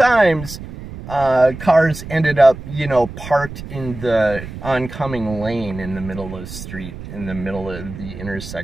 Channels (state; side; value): noise; right; rumble, 12 dB below the sound